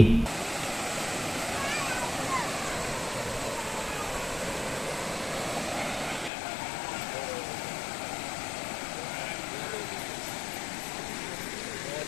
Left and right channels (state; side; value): drops out; right; at 6.3 s